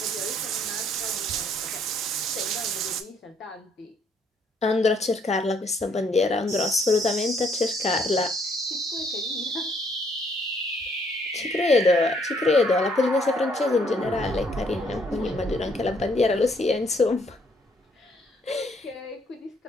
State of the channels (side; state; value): both; normal; correlation 0.67